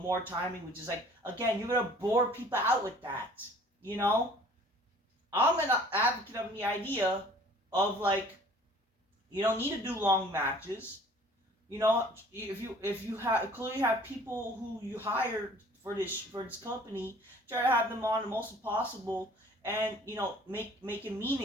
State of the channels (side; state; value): both; normal; correlation 0.51